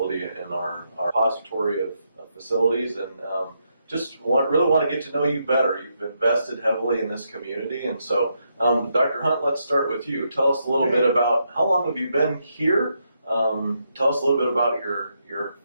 in our repository of facilities, and really want to get to know you better. You've invested heavily in this community, and so Dr. Hunt, let's start with you. Tell us a little bit about how long have you been here. Tell us a little bit about your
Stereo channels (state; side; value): inverted; both; correlation -0.80